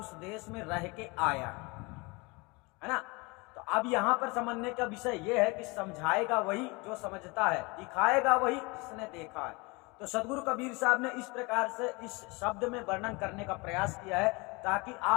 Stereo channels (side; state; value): right; quieter; 26.6 dB